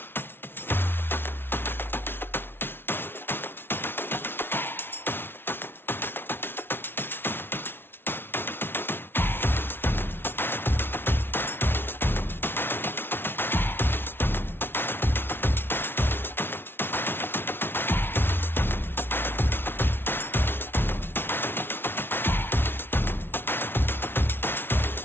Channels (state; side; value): late; right; 0.11 ms